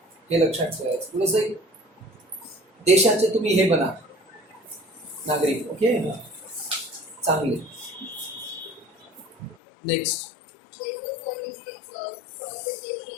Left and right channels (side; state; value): right; drops out; at 9.6 s